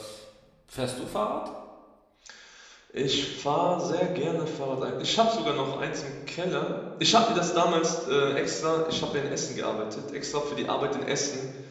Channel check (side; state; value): both; identical; correlation 1.00